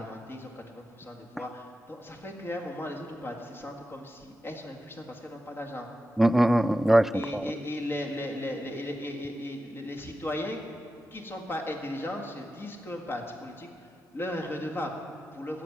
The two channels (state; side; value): normal; both; correlation 0.91